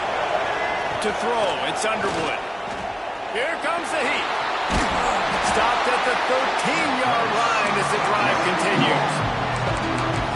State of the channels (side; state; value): both; identical; correlation 1.00